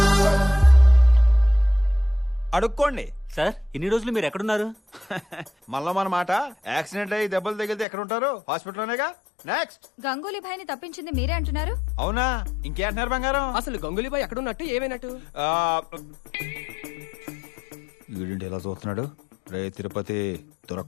అడుక్కోండి సార్. ఇన్ని రోజులు మీరు ఎక్కడున్నారు? మళ్ళా మన మాట. యాక్సిడెంట్ అయ్యి దెబ్బలు తగిలితే ఎక్కడ ఉంటారు? హాస్పిటల్లోనేగా. నెక్స్ట్. గంగూలీ భాయ్ని తప్పించింది మీరే అంటున్నారు. అవునా? ఇంకేంటున్నారు బంగారం? అసలు గంగూలీ భాయ్ ఎక్కడున్నట్టు ఏమైనట్టు? వీడింటి ఎలా చూస్తున్నాడు? రే తిరుపతి,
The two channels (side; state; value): right; drops out; at 7.9 s